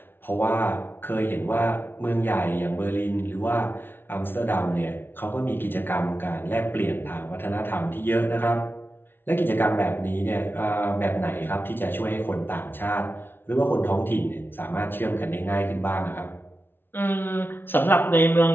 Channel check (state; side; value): late; right; 0.10 ms